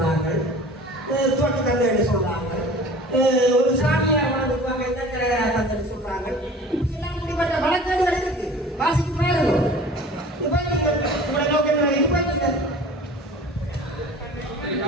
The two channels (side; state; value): both; normal; correlation 0.43